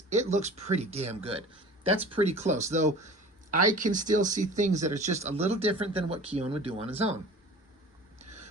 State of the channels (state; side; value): normal; both; correlation 0.41